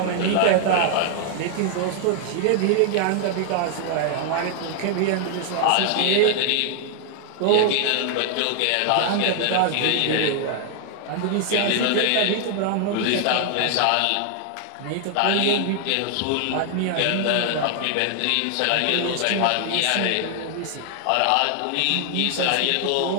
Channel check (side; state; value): both; different; correlation 0.00